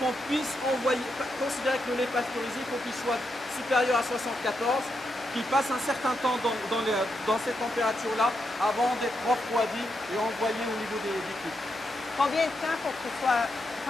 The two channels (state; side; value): normal; both; correlation 0.83